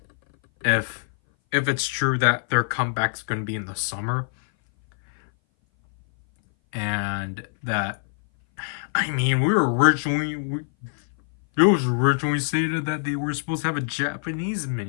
if it's true that their comeback's going to be in the summer, and that I mean it was originally stated that they were supposed to have a Japanese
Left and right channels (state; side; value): silent; right; 59 dB below the other